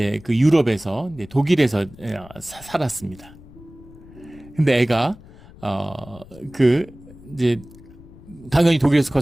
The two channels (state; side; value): noise; left; rumble, 21 dB below the sound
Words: 그 유럽에서, 독일에서 살았습니다. 근데 애가 이제 당연히 독일에서